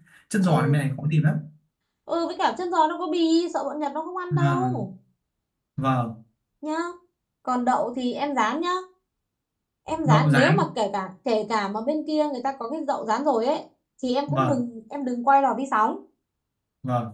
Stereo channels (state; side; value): identical; both; correlation 1.00